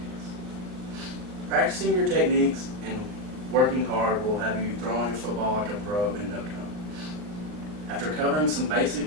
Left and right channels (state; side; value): late; left; 39 ms